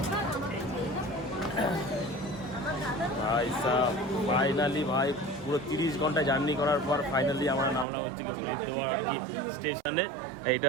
ভাই সাহেব, ফাইনালি ভাই পুরো 30 ঘন্টা জার্নি করার পর ফাইনালি আমরা নামলাম হচ্ছে হরিদ্বার আর কি স্টেশনে। এইটা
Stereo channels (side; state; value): left; drops out; at 7.9 s